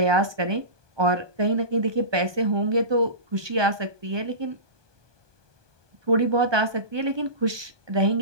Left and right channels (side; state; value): left; late; 1.2 ms